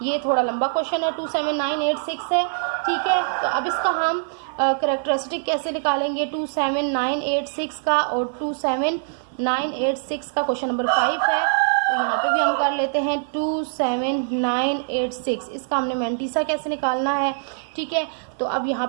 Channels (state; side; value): silent; left; 56 dB below the other